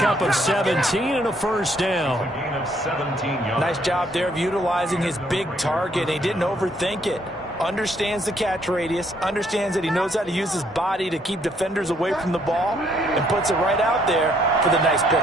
of 17 and a first down. Nice job there of utilizing his big target. He didn't overthink it. Understands the catch radius. Understands that he knows how to use his body to keep defenders away from the ball. And puts it right out there for the nice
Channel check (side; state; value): both; normal; correlation 0.68